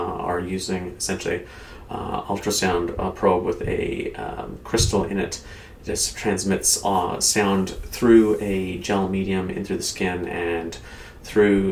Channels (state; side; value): identical; both; correlation 1.00